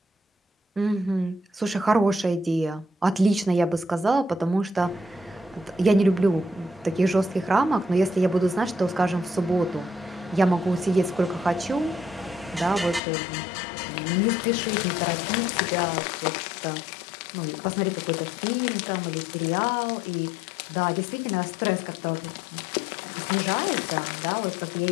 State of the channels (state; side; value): drops out; right; at 13.0 s